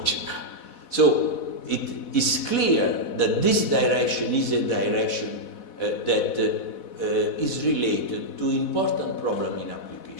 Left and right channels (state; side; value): late; right; 4.1 ms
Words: So it is clear that this direction is a direction that is related to important problem in